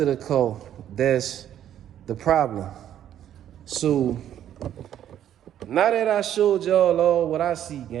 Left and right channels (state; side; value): quieter; left; 10.8 dB